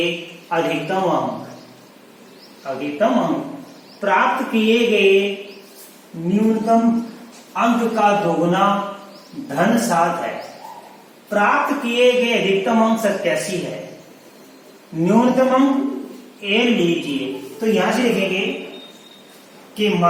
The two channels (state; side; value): identical; both; correlation 1.00